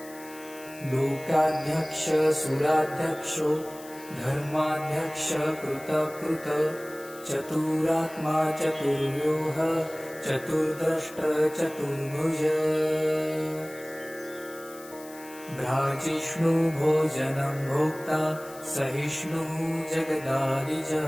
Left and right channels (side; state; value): left; noise; hiss, 19 dB below the sound